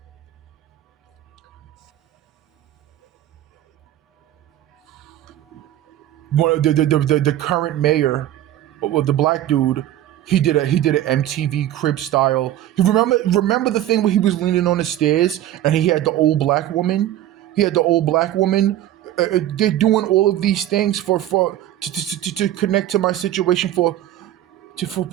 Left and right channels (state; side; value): quieter; left; 12.8 dB